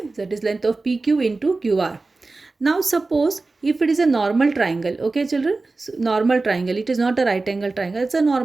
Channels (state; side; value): quieter; left; 3.5 dB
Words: that is length of PQ into QR. Now suppose if it is a normal triangle, okay children, so normal triangle, it is not a right angle triangle, it's a